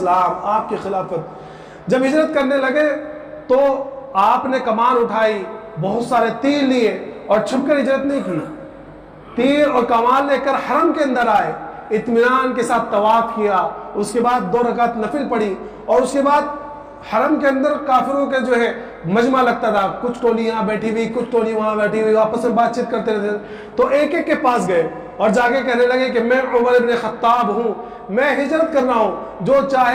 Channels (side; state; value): both; identical; correlation 1.00